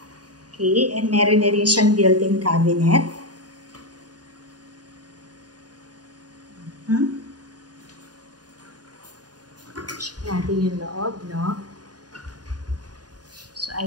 Okay, and meron na rin siyang built-in cabinet. Check natin yung loob, no? So,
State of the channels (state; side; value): late; left; 0.69 ms